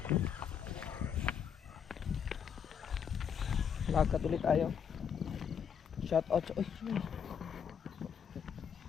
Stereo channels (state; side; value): quieter; right; 7.5 dB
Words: Lakad ulit tayo. Shout out. Uy.